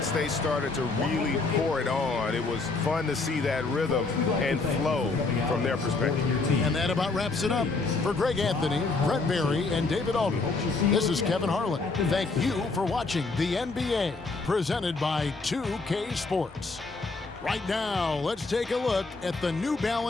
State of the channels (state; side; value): quieter; right; 3.8 dB